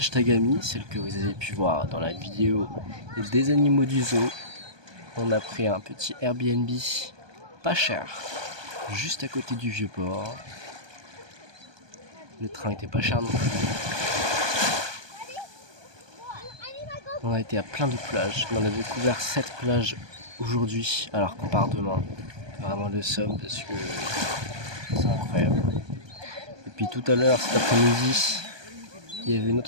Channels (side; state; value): left; late; 1.2 ms